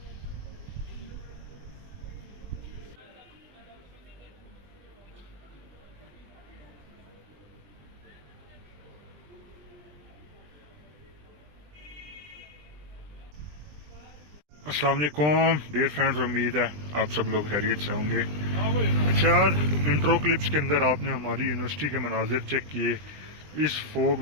अस्सलाम वालेकुम डियर फ्रेंड्स, उम्मीद है आप सब लोग खैरियत से होंगे। अच्छा यार, इंट्रो क्लिप्स के अंदर आपने हमारी यूनिवर्सिटी के मनाजिर चेक किए। इस फोग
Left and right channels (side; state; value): left; late; 20 ms